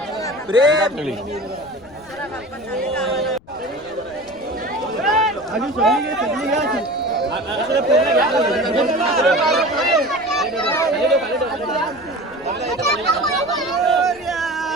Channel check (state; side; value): noise; left; rumble, 25 dB below the sound